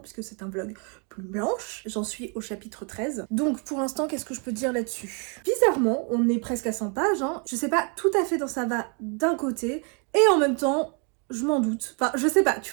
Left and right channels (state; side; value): quieter; left; 37.1 dB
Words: c'est un vlog Plume Blanche. J'en suis au chapitre 13. Donc pour l'instant, qu'est-ce que je peux dire là-dessus? Bizarrement, on est presque à 100 pages, hein. Je sais pas tout à fait dans ça va d'un côté, et en même temps, je m'en doute. Enfin, je sais pas,